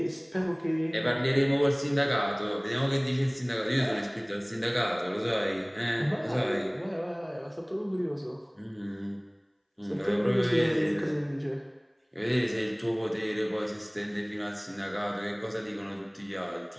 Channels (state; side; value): identical; both; correlation 1.00